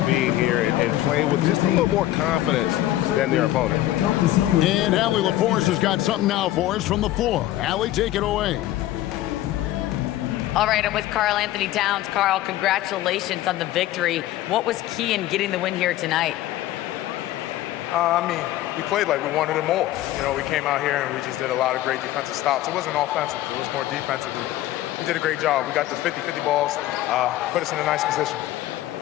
being here and playing with just a little more confidence than their opponent. And Allie LaForce has got something now for us from the floor. Allie, take it away. All right, I'm with Karl Anthony Towns. Karl, congratulations on the victory. What was key in getting the win here tonight? I mean, we played like we wanted it more. You know, we came out here and we just did a lot of great defensive stops. It wasn't offensive. It was more defensive. We did a great job. We got the 50-50 balls, put us in a nice position.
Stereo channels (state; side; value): quieter; right; 14.6 dB